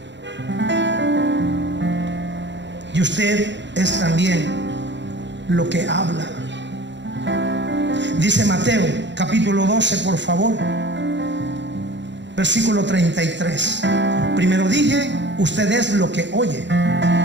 Y usted es también lo que habla. Dice Mateo capítulo 12, por favor, versículo 33. Primero dije, usted es lo que oye,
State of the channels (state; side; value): late; left; 0.52 ms